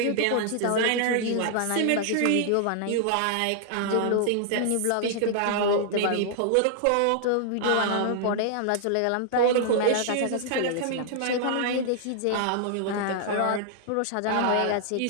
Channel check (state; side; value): different; both; correlation -0.01